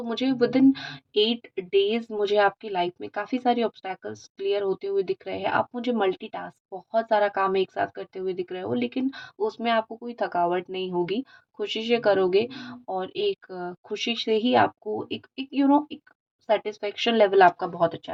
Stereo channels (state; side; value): identical; both; correlation 1.00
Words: मुझे विदिन 8 डेज मुझे आपकी लाइफ में काफ़ी सारे ऑब्स्टैकल्स क्लियर होते हुए दिख रहे हैं। आप मुझे मल्टीटास्क बहुत सारा काम एक साथ करते हुए दिख रहे हो, लेकिन उसमें आपको कोई थकावट नहीं होगी, खुशी से करोगे, और एक खुशी से ही आपको एक एक एक सेटिस्फेक्शन लेवल आपका बहुत अच्छा